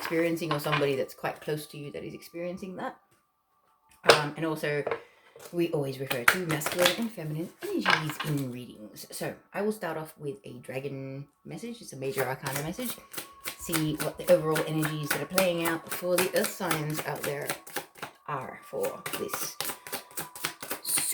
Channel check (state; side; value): identical; both; correlation 1.00